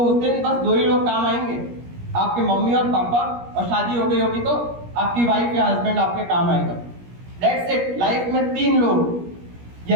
उस दिन बस दो ही लोग काम आएंगे, आपके मम्मी और पापा, और शादी हो गई होगी तो आपकी वाइफ या हस्बैंड आपके काम आएगा। That's it. लाइफ में 3 लोग,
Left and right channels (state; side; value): late; left; 17 ms